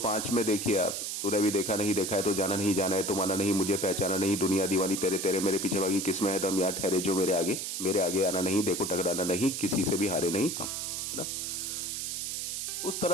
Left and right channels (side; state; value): right; noise; hiss, 3 dB below the sound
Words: में देखिए आप, तूने भी देखा नहीं देखा है तो जाना नहीं जाना है, तो माना नहीं मुझे पहचाना नहीं, दुनिया दीवानी तेरे तेरे मेरे पीछे भागी, किसमें है दम यार ठहरे जो मेरे आगे आना नहीं, देखो टकराना नहीं, किसी से भी हारे नहीं हम, है ना। उस